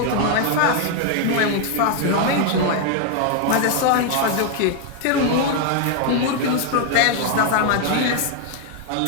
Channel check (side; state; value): both; different; correlation 0.01